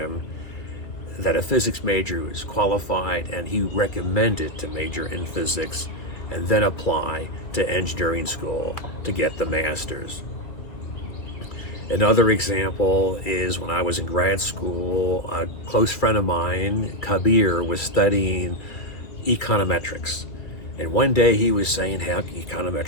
that a physics major was qualified, and he recommended to major in physics and then apply to engineering school to get the master's. Another example is when I was in grad school, a close friend of mine, Kabir, was studying econometrics. And one day he was saying how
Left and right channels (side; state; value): right; late; 2.4 ms